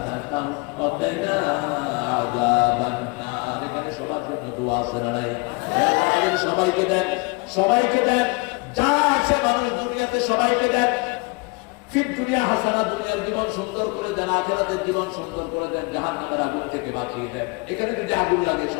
ওয়া কিনা আযাবান নার। এখানে সবার জন্য দোয়া আছে না নাই? আল্লাহ সবাইকে দেন, সবাইকে দেন, যা আছে মানুষ দুনিয়াতে সবাইকে দেন। ফিদ দুনিয়া হাসানা, দুনিয়ার জীবন সুন্দর করে দেন, আখিরাতের জীবন সুন্দর করে দেন, জাহান্নামের আগুন থেকে বাঁচিয়ে দেন। এখানে যদি আগুন লাগে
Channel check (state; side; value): quieter; right; 28.4 dB